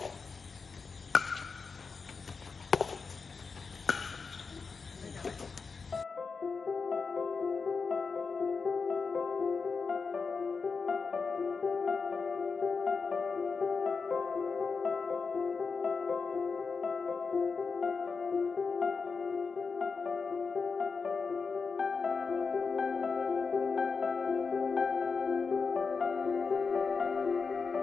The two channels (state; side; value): quieter; right; 4.9 dB